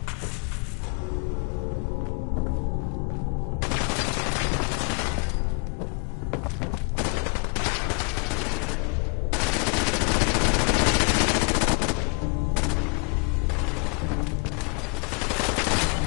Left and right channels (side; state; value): right; quieter; 36.6 dB